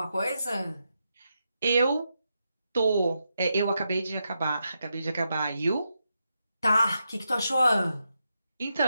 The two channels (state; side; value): inverted; both; correlation -0.85